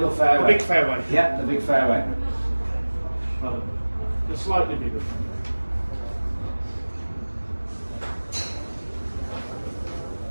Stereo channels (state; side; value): inverted; both; correlation -1.00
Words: fairway. The big fairway. Yeah, the big fairway. Well, the slightly bigger.